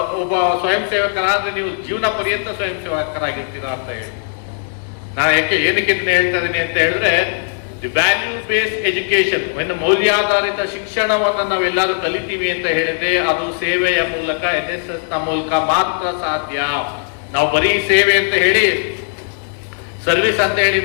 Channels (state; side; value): silent; right; digital silence